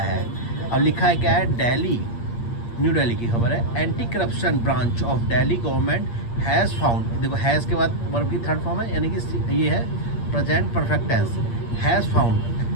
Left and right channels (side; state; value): right; late; 8.6 ms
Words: अब लिखा है क्या है, दिल्ली, न्यू दिल्ली की खबर है, anti corruption branch of Delhi government has found. देखो हैज़ के बाद वर्ब की थर्ड फॉर्म है, यानी कि ये है present perfect tense. Has found